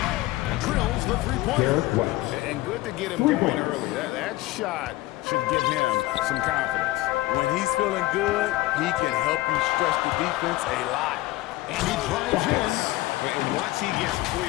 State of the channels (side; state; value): right; quieter; 18.0 dB